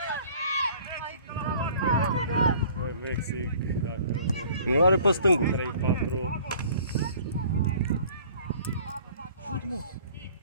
Băi, Mexic, dacă... Nu are pe stângul. 3-4... Șut, mă.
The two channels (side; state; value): both; inverted; correlation -0.51